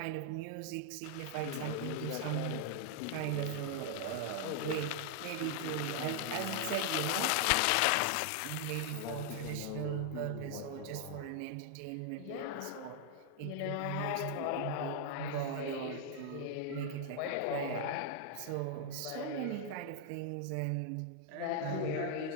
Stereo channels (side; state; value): both; different; correlation 0.00